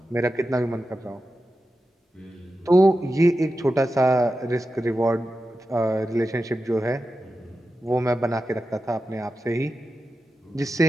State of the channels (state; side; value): normal; both; correlation 0.91